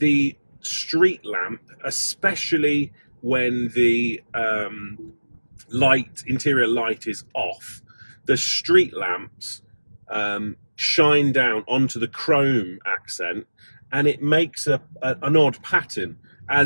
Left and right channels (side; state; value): both; inverted; correlation -1.00